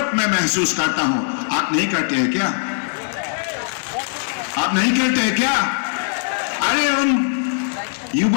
मैं महसूस करता हूं। आप नहीं करते हैं क्या? आप नहीं करते हैं क्या? अरे उन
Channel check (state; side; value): silent; right; 57 dB below the other